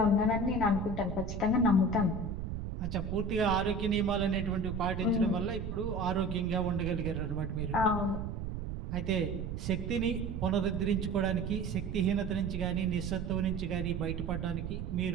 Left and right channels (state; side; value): noise; right; rumble, 5 dB below the sound